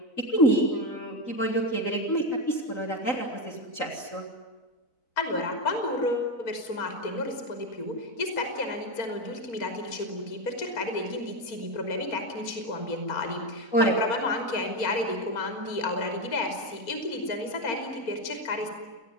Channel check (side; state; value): right; late; 4.3 ms